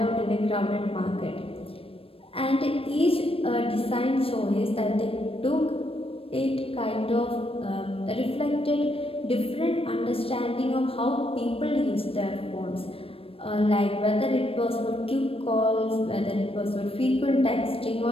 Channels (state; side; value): late; right; 0.27 ms